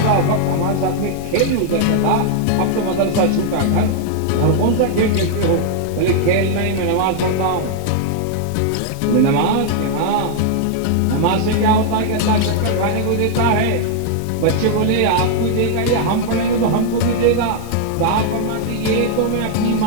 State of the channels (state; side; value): different; both; correlation -0.01